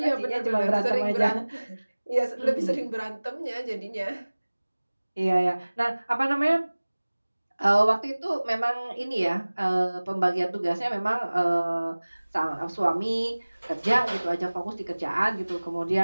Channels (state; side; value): inverted; both; correlation -1.00